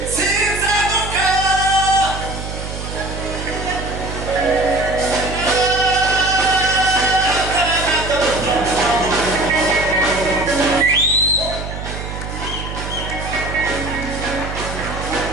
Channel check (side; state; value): right; noise; hum, 8 dB below the sound